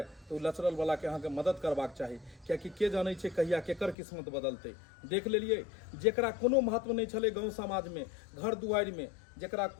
तो लचरल वाला के अहाँ के मदद करबाक चाही, कियाकि के जाने छै कहिया केकर किस्मत बदलते। देख लेलिए, जेकरा कोनो महत्व नहीं छले गाँव समाज में, घर दुआरि में, जेकरा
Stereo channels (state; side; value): drops out; right; at 4.0 s